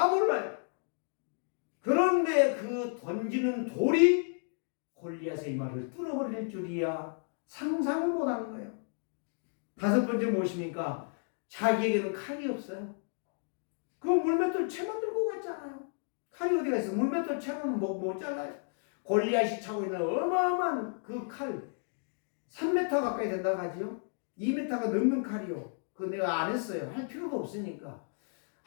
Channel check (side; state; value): right; silent; 56 dB below the other